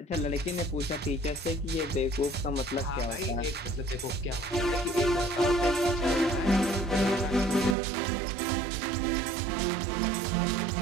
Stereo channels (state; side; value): drops out; left; at 7.8 s